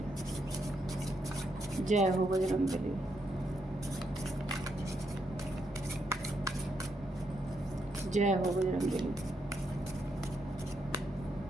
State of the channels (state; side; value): normal; both; correlation 0.79